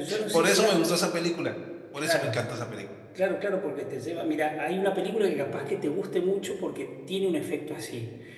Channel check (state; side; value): identical; both; correlation 1.00